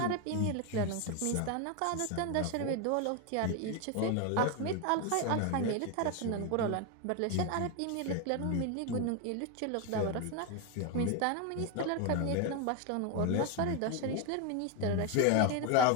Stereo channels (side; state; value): both; different; correlation 0.01